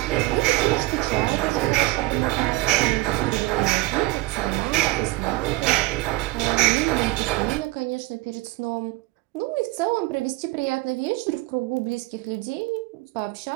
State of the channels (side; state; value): left; quieter; 19.9 dB